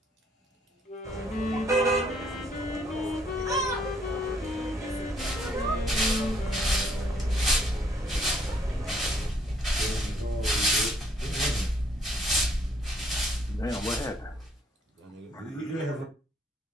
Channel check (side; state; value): both; normal; correlation 0.66